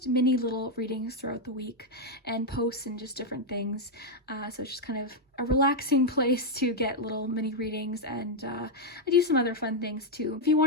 mini little readings throughout the week and posts and just different things. So it's just kind of a relaxing place to get little mini readings, and I do some other fun things too. If you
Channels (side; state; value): both; normal; correlation 0.00